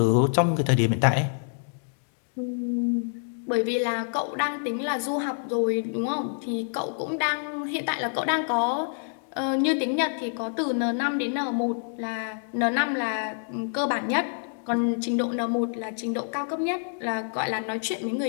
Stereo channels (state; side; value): silent; right; digital silence